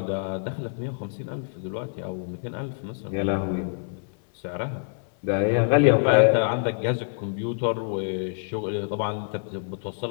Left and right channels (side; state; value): right; silent; 60 dB below the other